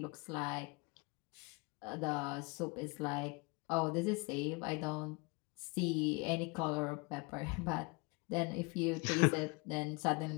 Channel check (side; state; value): right; quieter; 29.1 dB